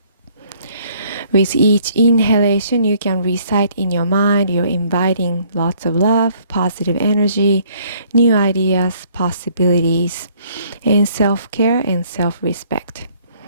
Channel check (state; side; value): inverted; both; correlation -0.62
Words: With each inhalation, you can recite in your mind, you're inviting lots of love, positive energy, new ideas, possibilities, and self-care and self-respect.